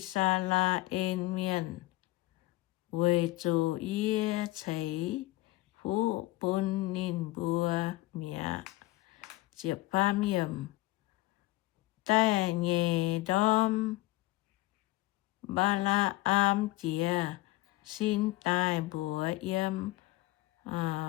sa la miên quê chủ yê cháy phú bún nín bùa mía chiệp pham yểm tai nhẹ đom ba la chìa xin tai bùa yếm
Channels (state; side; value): quieter; right; 19.1 dB